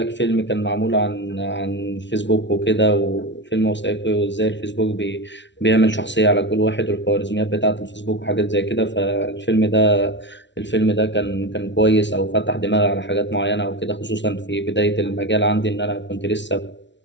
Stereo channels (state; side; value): late; right; 0.52 ms